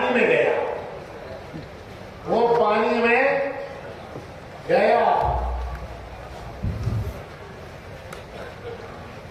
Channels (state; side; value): identical; both; correlation 1.00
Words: میں گیا، وہ پانی میں گیا۔